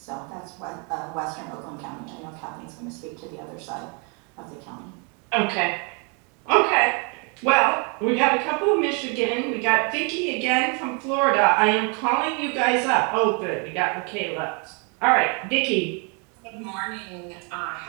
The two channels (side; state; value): left; quieter; 35.0 dB